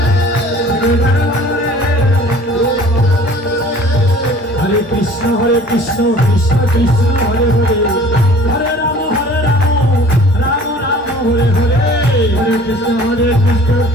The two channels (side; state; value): both; normal; correlation 0.48